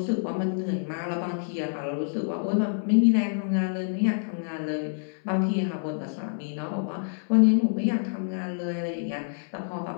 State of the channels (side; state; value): right; silent; 60 dB below the other